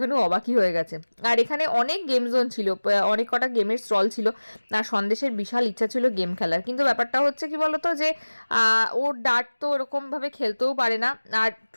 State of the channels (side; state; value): both; inverted; correlation -1.00